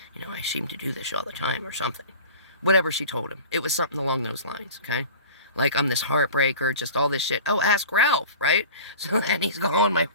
you know, I seem to do this all the time or something. Whatever she told him. It was something along those lines, okay? Like, I'm this heartbreaker, just all this shit. Oh, ask Ralph, right? So then he's calling my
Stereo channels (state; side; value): inverted; both; correlation -0.39